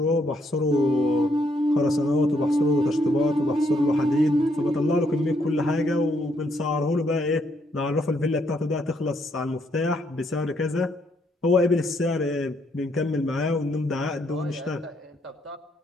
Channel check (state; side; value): normal; both; correlation 0.73